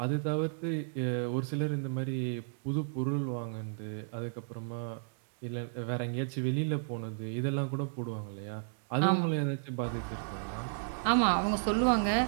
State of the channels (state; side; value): silent; left; digital silence